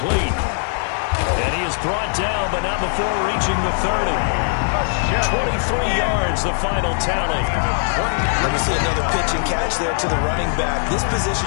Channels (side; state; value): right; silent; digital silence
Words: And he is brought down, but not before reaching the 30. 23 yards, the final tally. Let me see another pitch and catch there to the running back. This